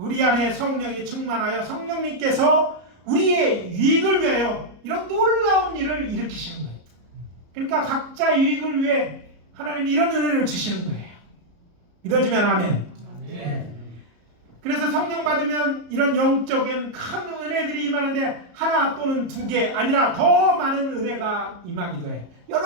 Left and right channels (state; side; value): late; left; 34 ms